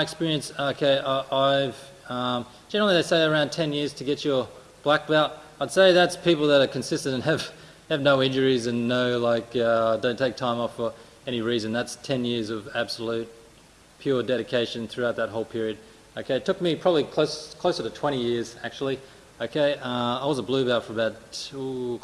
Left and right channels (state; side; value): identical; both; correlation 1.00